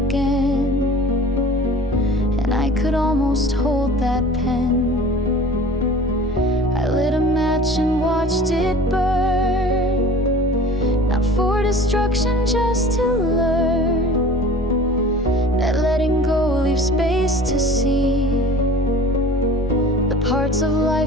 And I could almost hold that pen. I lit a match and watched it burn, not for destruction, just to learn that letting go leaves space to see the parts of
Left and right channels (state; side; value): normal; both; correlation 0.43